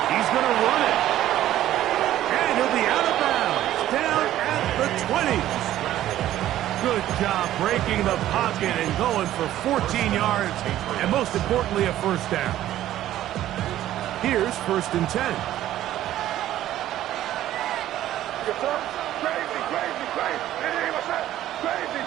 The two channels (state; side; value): quieter; left; 13.2 dB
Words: He's going to run it. And he'll be out of bounds. Down at the 20. Good job breaking the pocket and going for 14 yards. And most importantly, a 1st down. Here's 1st and 10.